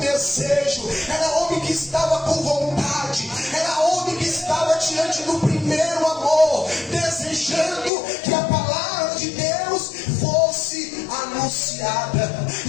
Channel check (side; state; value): right; drops out; at 7.9 s